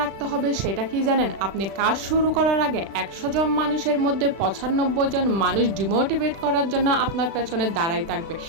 রাখতে হবে, সেটা কি জানেন? আপনি কাজ শুরু করার আগে ১০০ জন মানুষের মধ্যে ৯৫ জন মানুষ ডিমোটিভেট করার জন্য আপনার পেছনে দাঁড়াই থাকবে,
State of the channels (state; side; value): late; left; 36 ms